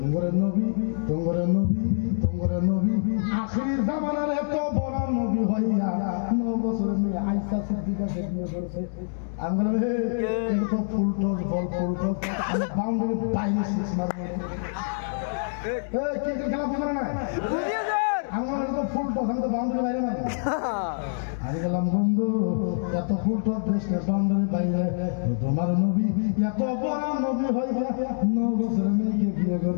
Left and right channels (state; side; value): silent; right; digital silence